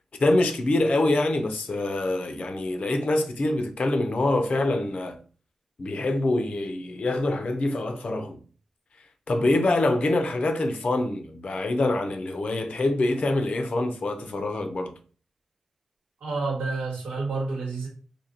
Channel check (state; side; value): normal; both; correlation 0.91